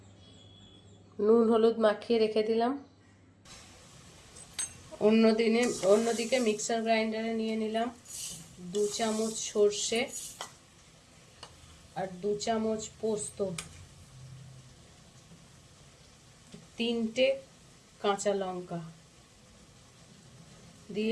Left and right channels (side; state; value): both; identical; correlation 1.00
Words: নুন হলুদ মাখিয়ে রেখে দিলাম। অন্যদিকে মিক্সার গ্রাইন্ডারে নিয়ে নিলাম 2 চামচ সর্ষে আর 2 চামচ পোস্ত, 3টে কাঁচা লঙ্কা